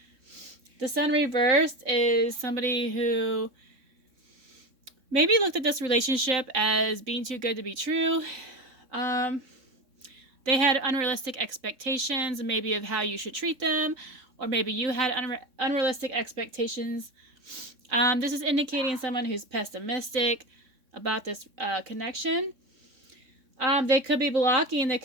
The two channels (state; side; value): late; left; 3.6 ms